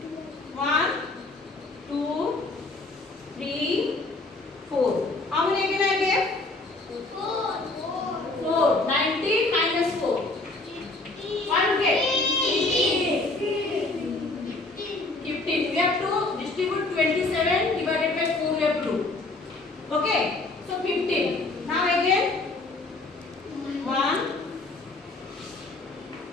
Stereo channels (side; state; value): right; quieter; 3.1 dB